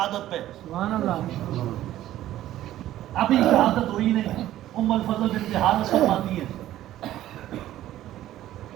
پہ، ابھی شہادت ہوئی نہیں۔ ام الفضل بنت حارث فرماتی ہے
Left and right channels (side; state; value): left; quieter; 13.5 dB